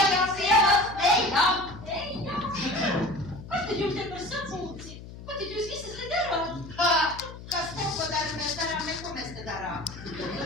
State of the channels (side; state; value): left; noise; hum, 14 dB below the sound